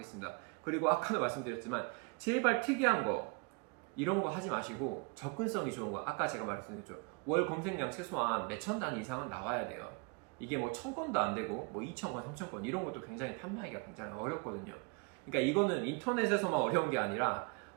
그리고 아까도 말씀드렸지만 제발 특이한 거, 이런 거 하지 마시고 접근성이 좋은 거, 아까 제가 말씀드렸죠. 월 검색량 최소한 몇천 단위 이상은 나와야 돼요. 이게 뭐 1000건도 안 되고 뭐 2000건, 3000건 이런 것도 굉장히 판매하기가 굉장히 어렵거든요. 그러니까 이거는 인터넷에서만 어려운 게 아니라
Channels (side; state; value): left; quieter; 32.2 dB